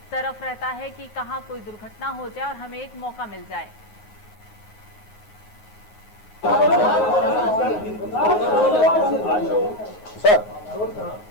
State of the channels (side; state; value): right; late; 9.5 ms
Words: तरफ रहता है कि कहां कोई दुर्घटना हो जाए और हमें एक मौका मिल जाए। सर,